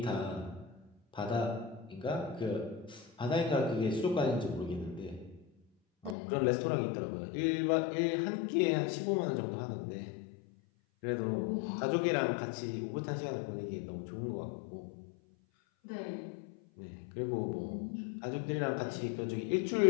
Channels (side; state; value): right; drops out; at 6.2 s